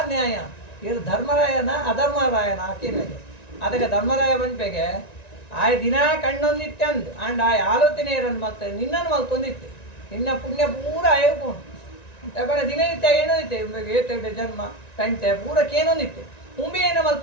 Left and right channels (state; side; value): late; right; 1.9 ms